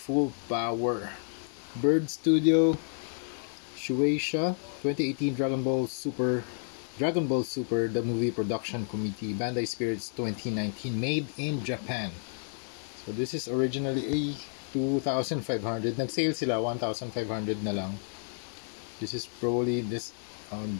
Power. Bird Studio, Shueisha, 2018 Dragon Ball Super, the movie production committee, Bandai Spirits 2019, made in Japan. So this is originally a 2,500. Nag-sale sila, 1,500 na lang. This is Broly. This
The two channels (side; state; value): right; silent; 57 dB below the other